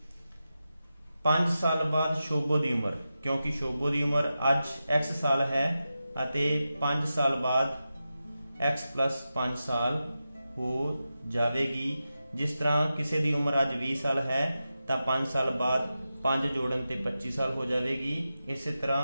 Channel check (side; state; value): both; inverted; correlation -0.92